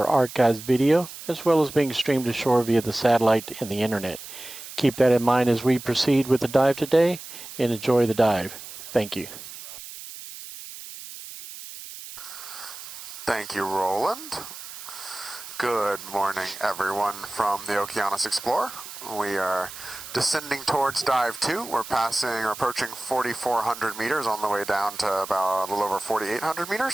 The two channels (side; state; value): right; noise; hiss, 13 dB below the sound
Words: archived video, as well as being streamed ashore via the satellite and the internet. Keep that in mind as we proceed with the dive today, and enjoy the dive. Thank you. Thank you, Roland. Good morning, everyone from the Okeanos Explorer. We are descending towards dive 2. We're approaching 4,400 meters on the way down to about a little over 4,800